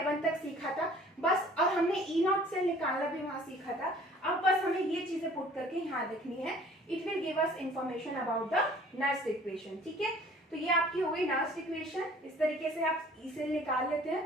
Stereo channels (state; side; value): normal; both; correlation 0.52